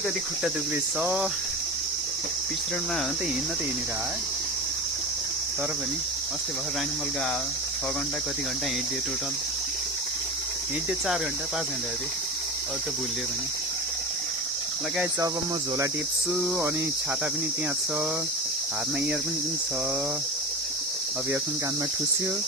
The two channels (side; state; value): both; normal; correlation 0.26